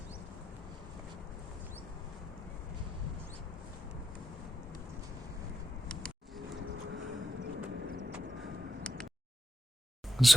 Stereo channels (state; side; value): normal; both; correlation 0.88